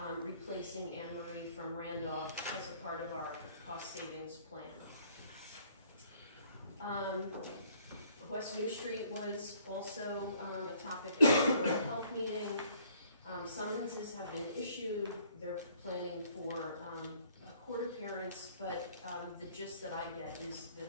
replacing Anne Marie from Randolph as a part of our cost savings plan. West New Street was also a topic at the Board of Health meeting. Summonses have been issued. They're planning for a court appearance, but the gist that I get is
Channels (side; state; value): both; inverted; correlation -0.60